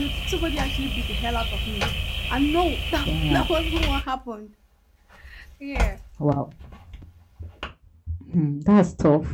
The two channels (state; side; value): identical; both; correlation 1.00